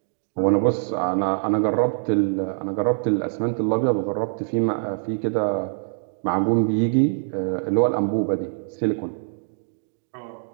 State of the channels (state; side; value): silent; left; digital silence